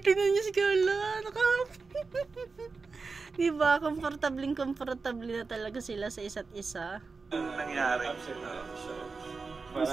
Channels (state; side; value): quieter; left; 4.4 dB